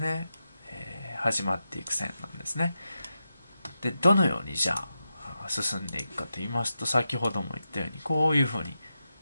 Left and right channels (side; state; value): both; inverted; correlation -0.89